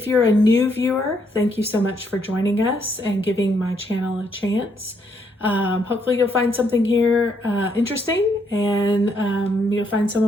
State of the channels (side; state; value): both; normal; correlation 0.73